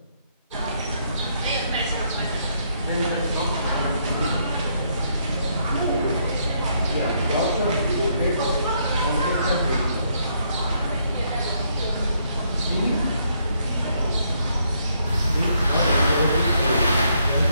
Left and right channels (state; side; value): inverted; both; correlation -0.73